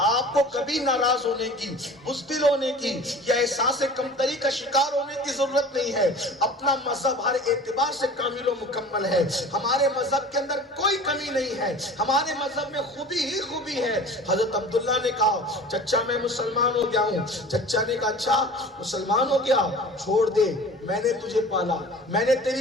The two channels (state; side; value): normal; both; correlation 0.41